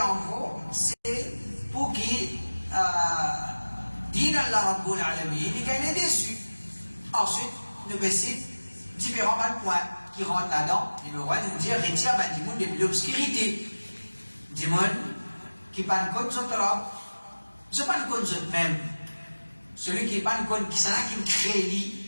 en gros, c'est pour qui Din Allah Rabbul Alamin, il est déçu. Ensuite, nous baissons différents points qui rentrent là-dedans. Numéro 1, nous dire retire du monde de l'obscurité. Du monde qui pas de compte sur l'homme, ce n'est pas de compte sur même. Celui qui n'est pas de compte qui s'en a qui crée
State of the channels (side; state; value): both; inverted; correlation -1.00